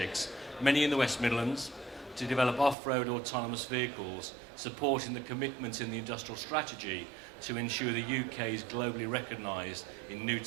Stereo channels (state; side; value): drops out; left; at 2.8 s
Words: many in the West Midlands, to develop off-road autonomous vehicles, supporting the commitments in the industrial strategy to ensure the UK is globally recognised in new